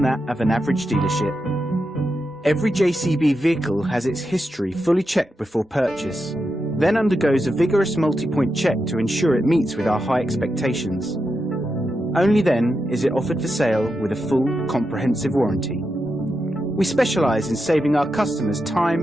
that of an average dealership. Every JCB vehicle has its history fully checked before purchase, then undergoes a vigorous multi-point check to ensure it meets with our high expectations. Only then is it offered for sale with a full, comprehensive warranty. We specialise in saving our customers time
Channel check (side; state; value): both; normal; correlation 0.87